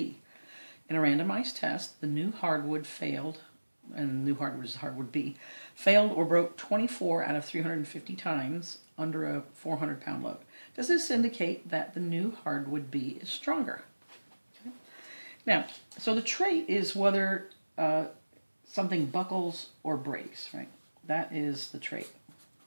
In a randomized test, the new hardwood failed, and the new hardwood is hardwood B, failed or broke 24 out of 350 times under a 400-pound load. Does this indicate that the new hardwood B is stronger? Okay. Now, so the trait is whether something buckles or breaks, right? That is the trait.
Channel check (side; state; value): both; inverted; correlation -1.00